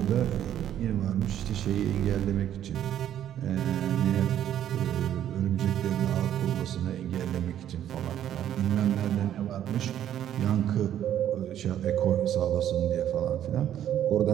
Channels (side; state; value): left; quieter; 10.8 dB